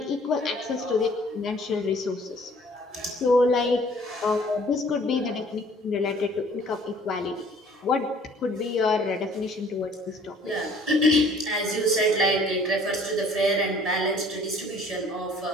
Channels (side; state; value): both; normal; correlation 0.54